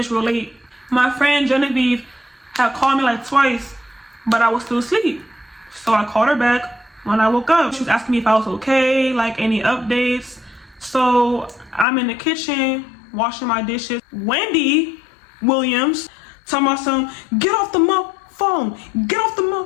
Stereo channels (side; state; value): right; drops out; at 11.9 s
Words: real late. My friend Genevieve had called me like twice, but I was still asleep. So I called her back when I woke up. She was asking me if I was okay, like any updates. So I'm in the kitchen washing my dishes. Wendy Williams talking about some, get off the phone. Get off